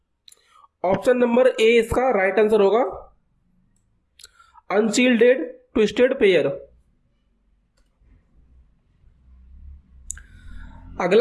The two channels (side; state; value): both; identical; correlation 1.00